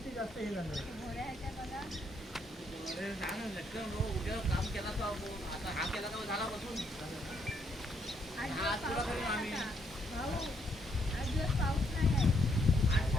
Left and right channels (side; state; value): both; normal; correlation 0.73